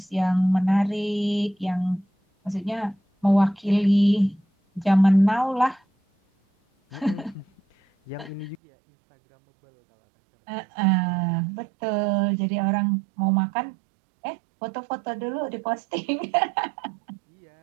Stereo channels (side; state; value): left; drops out; at 8.6 s